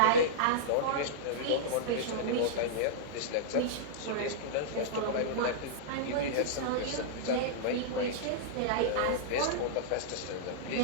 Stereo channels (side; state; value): both; different; correlation -0.03